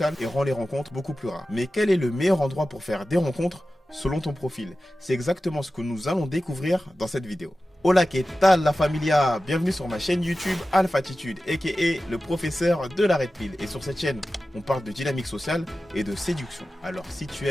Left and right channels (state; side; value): normal; both; correlation 0.95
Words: et rend les rencontres beaucoup plus rares. Mais quel est le meilleur endroit pour faire des rencontres selon ton profil? C'est exactement ce que nous allons découvrir dans cette vidéo. Hola, que tal la familia? Bienvenue sur ma chaîne YouTube Alphatitude, aka le professeur de la Red Pill. Et sur cette chaîne, on parle de dynamique sociale et de séduction. Alors si tu